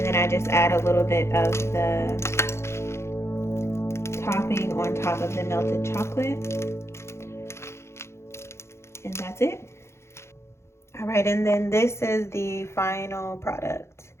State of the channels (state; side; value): late; right; 0.13 ms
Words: then I just add a little bit of the topping on top of the melted chocolate. And that's it. All right, and then this is the final product.